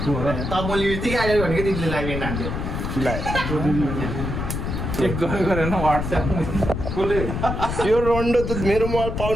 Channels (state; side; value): noise; left; rumble, 3 dB below the sound